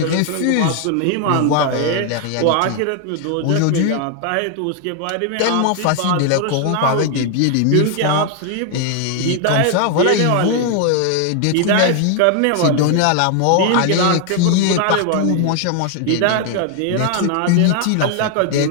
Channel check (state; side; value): different; both; correlation 0.00